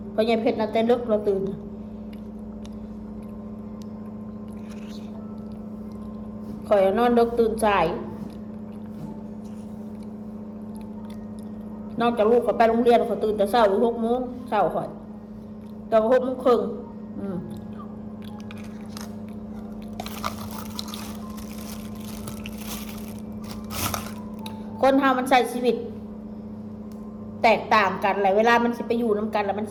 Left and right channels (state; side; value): identical; both; correlation 1.00